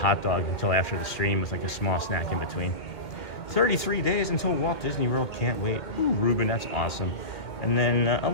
dog until after the stream with like a small snack in between. 33 days until Walt Disney World, can't wait. Ooh, Ruben, that's awesome. And then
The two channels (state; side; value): late; right; 2.1 ms